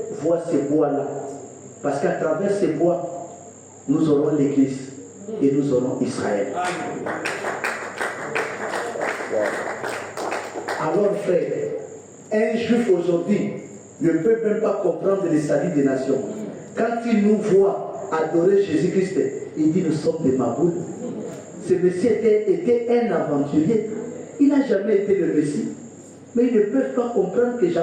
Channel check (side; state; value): both; identical; correlation 1.00